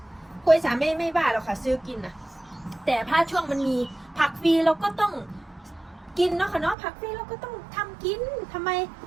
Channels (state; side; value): drops out; left; at 6.8 s